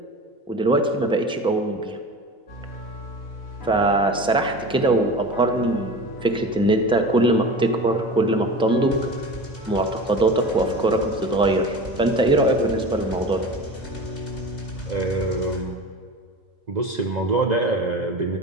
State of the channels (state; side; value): normal; both; correlation 0.33